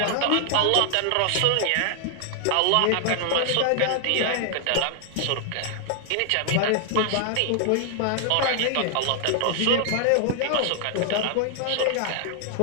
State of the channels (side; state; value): both; different; correlation 0.00